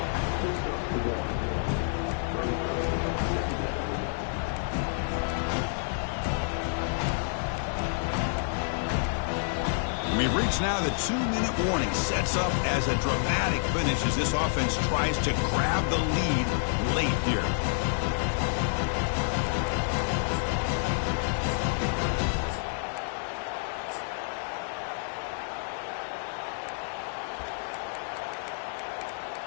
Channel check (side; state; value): right; silent; digital silence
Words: It's now the 2-minute warning. Sets up as a dramatic finish as this offense tries to grab the lead late here.